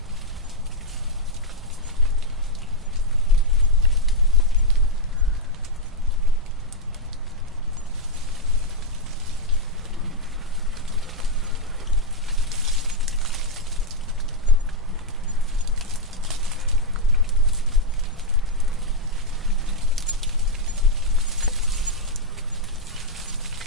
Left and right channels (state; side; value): normal; both; correlation -0.01